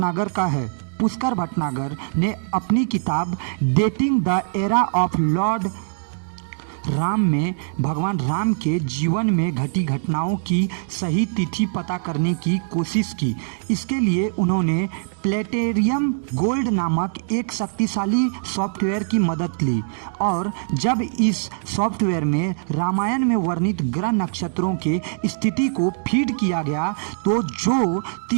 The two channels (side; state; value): left; silent; digital silence